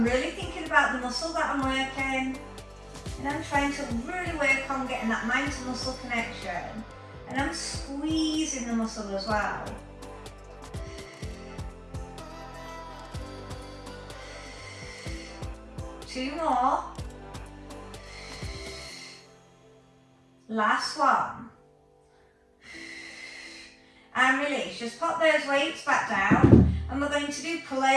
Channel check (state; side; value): identical; both; correlation 1.00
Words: really thinking about the muscle that I'm working, and I'm trying to really work on getting that mind to muscle connection, and I'm squeezing the muscle as well. Two more. Last one. And release. Just pop those weights back down, and we're going to do pull